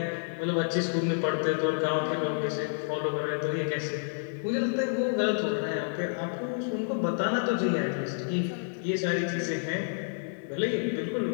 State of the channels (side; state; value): right; silent; 57 dB below the other